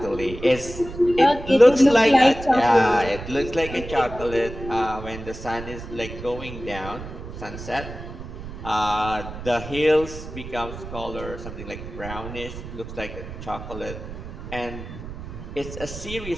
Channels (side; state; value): right; noise; rumble, 11 dB below the sound